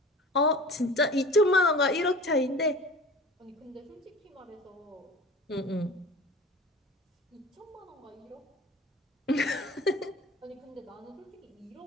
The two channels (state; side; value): normal; both; correlation 0.39